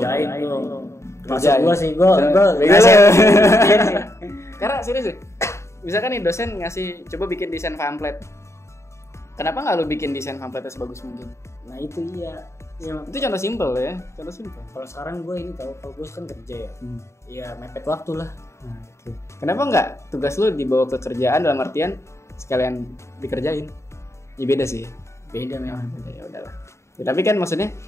Masuk gua sih, gua karena serius sih. Misalkan nih dosen ngasih coba bikin desain pamflet. Kenapa nggak lu bikin desain pamfletnya sebagus mungkin? Nah itu iya. Itu contoh simpel ya, contoh simpel. Kalau sekarang gue ini tahu, kalau gue kan kerja ya, ya mepet waktu lah. Kenapa nggak tugas lu dibawa ke kerjaan dalam artian sekalian dikerjain? Ya beda sih. Beda memang. Ya udahlah. Ya, tapi kan maksudnya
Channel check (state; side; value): late; right; 0.14 ms